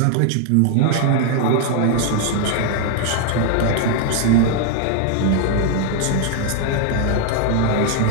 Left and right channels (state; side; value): different; both; correlation 0.00